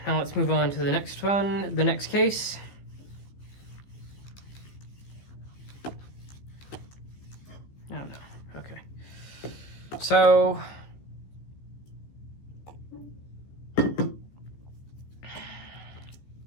now let's move on to the next one, the next case. Oh no, okay. So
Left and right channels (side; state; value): right; late; 15 ms